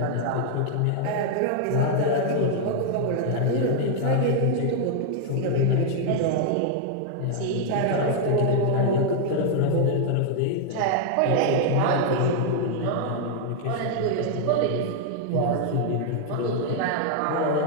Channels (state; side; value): different; both; correlation 0.00